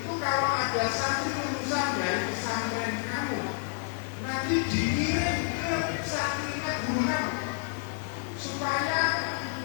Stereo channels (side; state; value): right; silent; 58 dB below the other